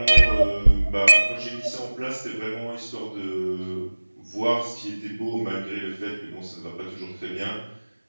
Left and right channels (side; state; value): both; inverted; correlation -1.00